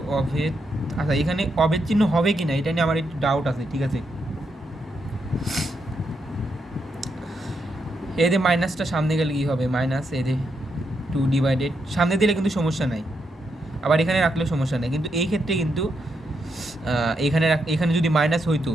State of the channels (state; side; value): normal; both; correlation 0.81